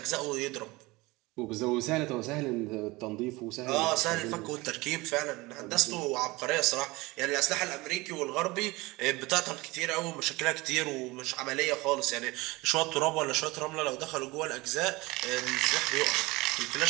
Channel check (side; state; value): left; quieter; 22.1 dB